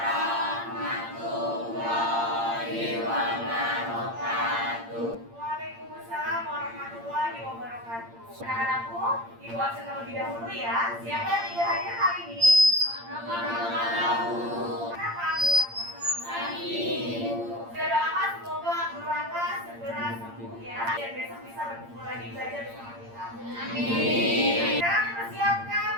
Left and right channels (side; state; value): left; late; 8.7 ms